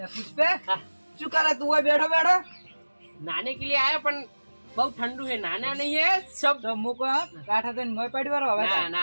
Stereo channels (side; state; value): both; inverted; correlation -1.00